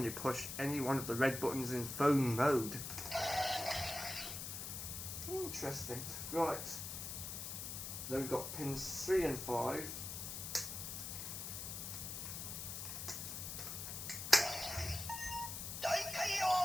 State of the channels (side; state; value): left; noise; hiss, 6 dB below the sound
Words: you push any one of the red buttons in phone mode. Interesting. Right. Then we've got pins 3 and 5.